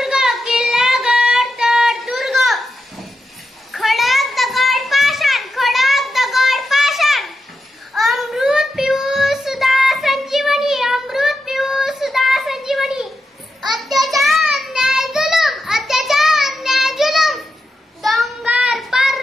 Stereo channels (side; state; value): both; normal; correlation 0.88